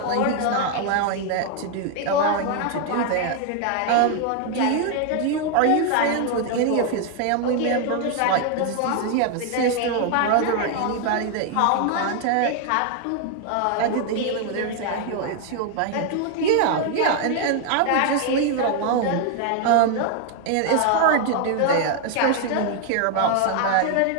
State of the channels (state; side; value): different; both; correlation 0.01